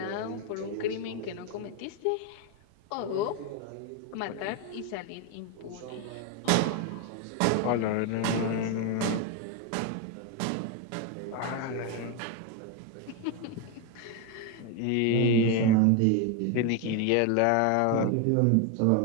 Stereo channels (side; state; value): both; different; correlation 0.02